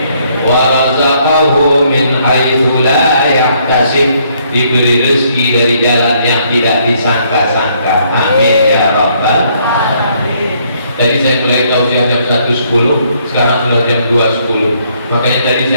Wa razaqahu min haitsu la yahtasib, diberi rezeki dari jalan yang tidak disangka-sangka. Amin ya rabbal alamin. Tadi saya mulai tausiah jam 1.10, sekarang sudah jam 2.10. Makanya tadi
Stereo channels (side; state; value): both; inverted; correlation -0.68